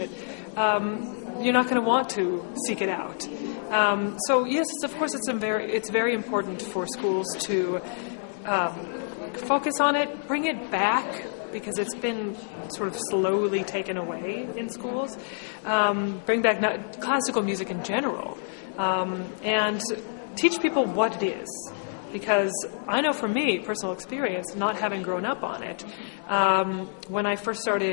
you're not going to want to seek it out. So yes, of course, it's very important for schools to focus on it, bring it back, because it's been sort of slowly taken away in schools. Bring back classical music in general, and teach people what it is. Because I know from me, personal experience, not having grown up on it, when I first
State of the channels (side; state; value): right; silent; digital silence